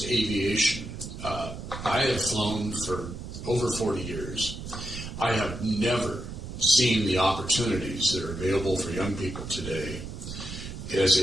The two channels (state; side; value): noise; right; rumble, 9 dB below the sound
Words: to aviation. I have flown for over 40 years. I have never seen the opportunities that are available for young people today as